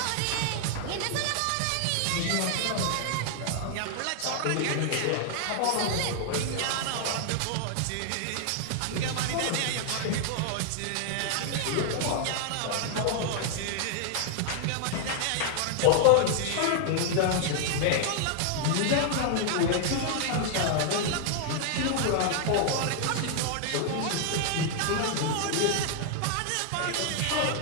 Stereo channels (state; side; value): different; both; correlation 0.00